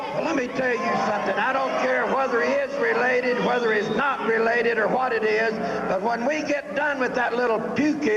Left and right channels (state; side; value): identical; both; correlation 1.00